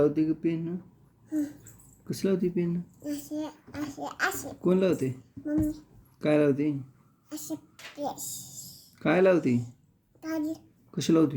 ग पेन? कसं लावते पेन? कोण लावते? काय लावते? काय लावते? कशी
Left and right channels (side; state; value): both; identical; correlation 1.00